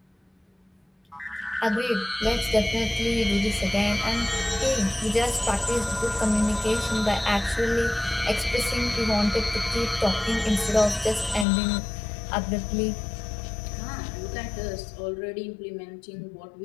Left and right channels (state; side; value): drops out; right; at 11.5 s